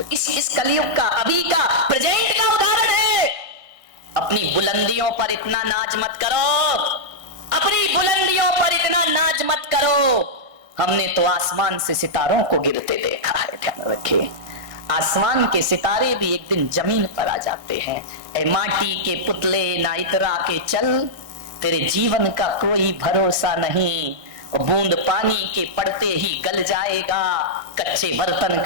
इस कलयुग का, अभी का, प्रेजेंट का उदाहरण है। अपनी बुलंदियों पर इतना नाज मत करो, अपनी बुलंदियों पर इतना नाज मत करो। हमने तो आसमान से सितारों को गिरते देखा है, ध्यान रखिए। आसमान के सितारे भी एक दिन जमीन पर आ जाते हैं। ऐ माटी के पुतले ना इतरा के चल, तेरे जीवन का कोई भरोसा नहीं। और बूंद पानी के पड़ते ही गल जाएगा, कच्चे बर्तन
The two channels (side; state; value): left; late; 1.6 ms